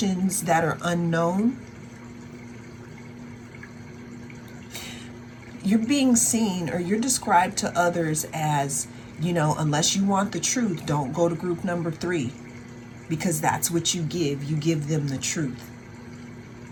that are unknown. You're being seen, or you're described to others as, unless you want the truth, don't go to group number 3, because that's what you give. You give them the truth.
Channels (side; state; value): both; identical; correlation 1.00